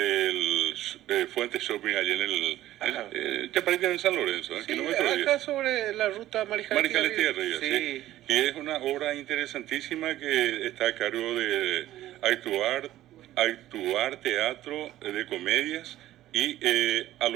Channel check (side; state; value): left; quieter; 14.2 dB